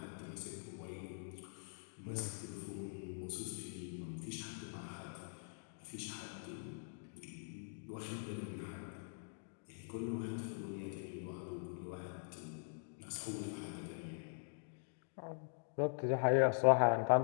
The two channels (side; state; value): right; silent; digital silence